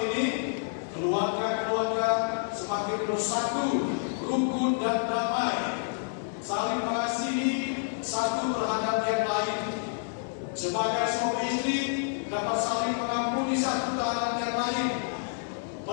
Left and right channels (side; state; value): right; silent; digital silence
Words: ini, keluarga-keluarga semakin bersatu, rukun dan damai, saling mengasihi satu terhadap yang lain. Sebagai suami istri dapat saling mengampuni satu terhadap yang lain,